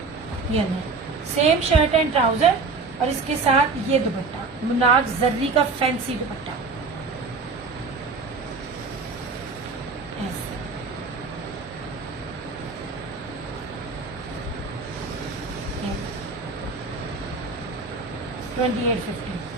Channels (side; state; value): left; quieter; 4.2 dB